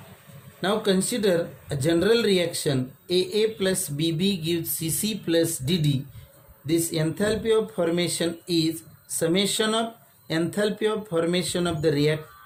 Now consider a general reaction AA plus BB gives CC plus DD. This enthalpy of formation is summation of enthalpy of formation of the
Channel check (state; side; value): identical; both; correlation 1.00